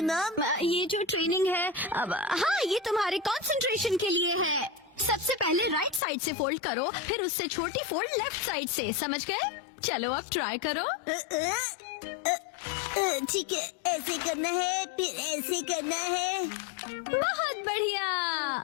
मॉम? ये जो ट्रेनिंग है अब, हाँ ये तुम्हारे कंसंट्रेशन के लिए है। सबसे पहले राइट साइड से फोल्ड करो, फिर उससे छोटी फोल्ड लेफ्ट साइड से। समझ गए? चलो अब ट्राई करो। ठीक है, ऐसे करना है, फिर ऐसे करना है। बहुत बढ़िया।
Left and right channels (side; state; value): right; drops out; at 6.0 s